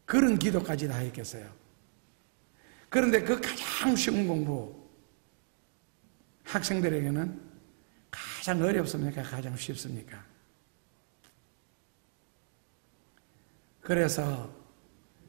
그런 기도까지 다 했겠어요. 그런데 그 가장 쉬운 공부, 학생들에게는 가장 어렵습니까? 가장 쉽습니까? 그래서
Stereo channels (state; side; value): silent; left; digital silence